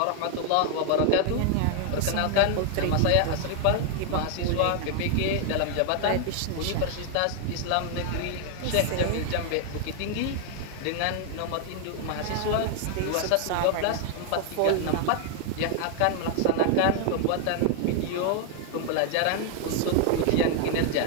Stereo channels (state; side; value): different; both; correlation 0.00